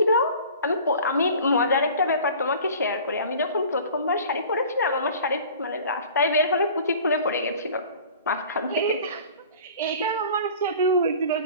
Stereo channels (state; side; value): inverted; both; correlation -0.44